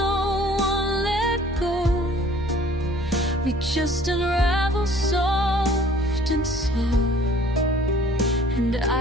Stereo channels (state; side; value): normal; both; correlation 0.53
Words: one let go. We just unravel soft and slow, and